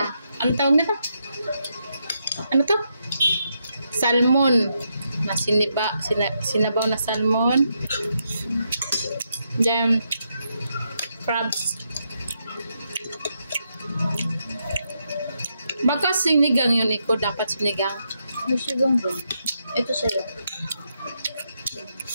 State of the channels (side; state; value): both; inverted; correlation -0.81